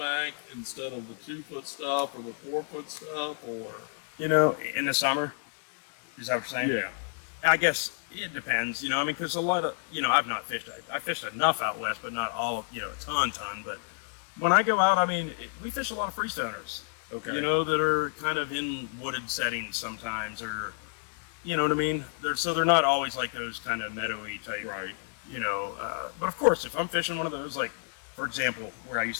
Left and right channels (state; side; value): silent; right; 58 dB below the other